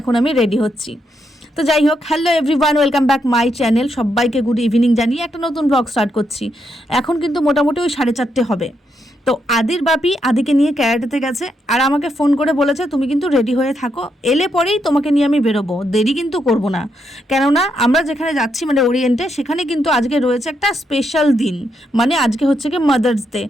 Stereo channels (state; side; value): normal; both; correlation 0.79